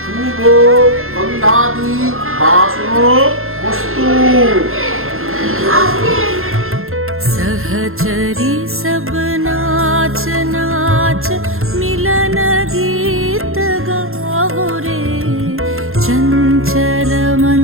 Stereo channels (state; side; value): late; left; 0.61 ms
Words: सहचरी सब नाच नाच मिलन गीत गाओ रे, चंचल